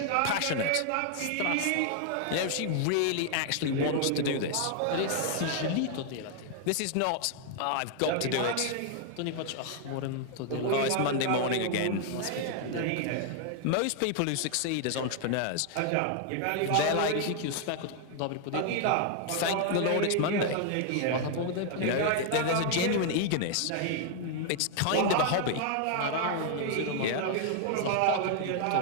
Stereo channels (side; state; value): both; different; correlation 0.00